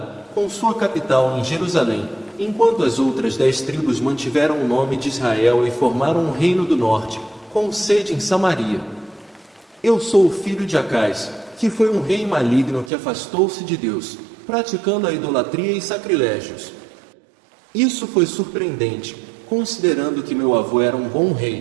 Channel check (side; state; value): left; drops out; at 12.9 s